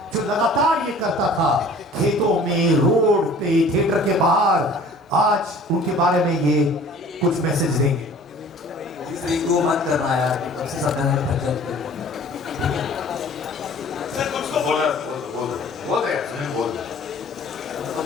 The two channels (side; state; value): both; normal; correlation 0.48